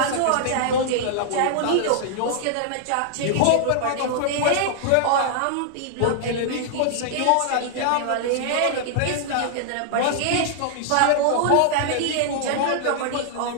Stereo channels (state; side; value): different; both; correlation -0.01